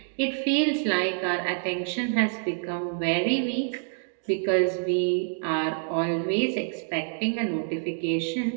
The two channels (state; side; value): silent; left; digital silence